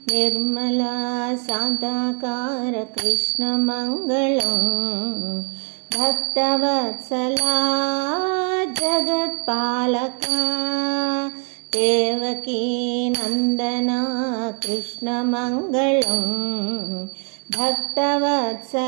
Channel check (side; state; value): left; quieter; 39.6 dB